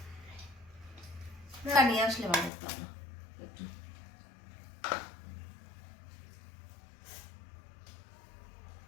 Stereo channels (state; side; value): drops out; right; at 2.5 s